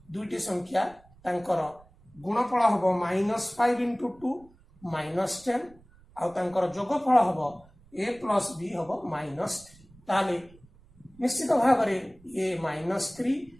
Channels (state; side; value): noise; right; rumble, 27 dB below the sound